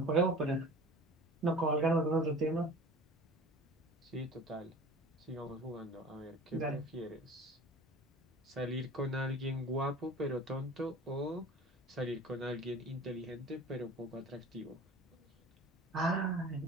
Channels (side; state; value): both; normal; correlation 0.41